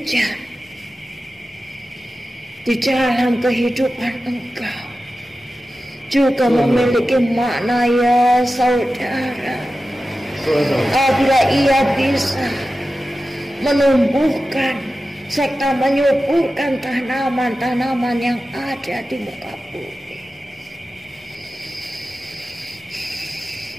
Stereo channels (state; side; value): normal; both; correlation 0.93